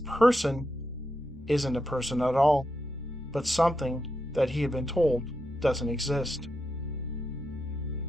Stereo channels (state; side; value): normal; both; correlation 0.86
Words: isn't a person at all, but something that he had been told doesn't exist.